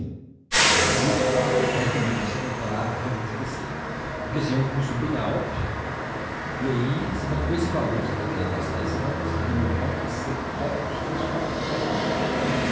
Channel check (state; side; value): identical; both; correlation 1.00